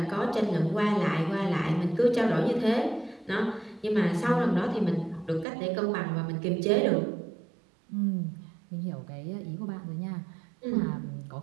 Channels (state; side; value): drops out; left; at 5.5 s